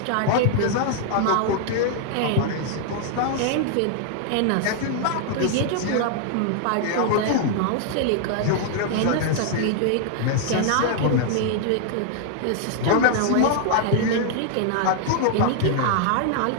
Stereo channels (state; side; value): different; both; correlation 0.00